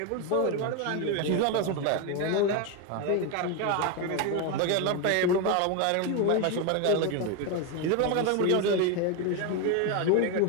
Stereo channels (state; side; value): different; both; correlation 0.02